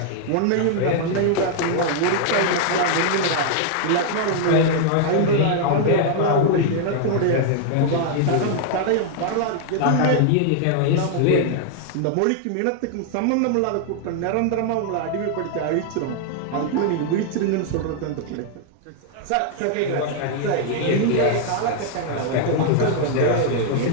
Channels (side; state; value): both; different; correlation 0.00